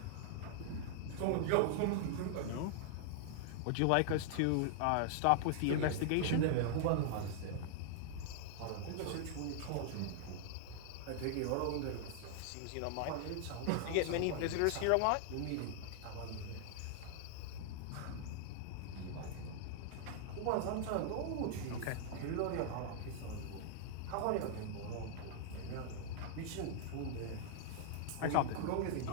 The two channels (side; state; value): both; different; correlation -0.01